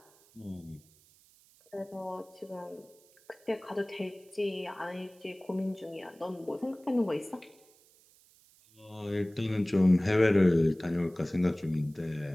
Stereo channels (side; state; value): right; noise; hiss, 29 dB below the sound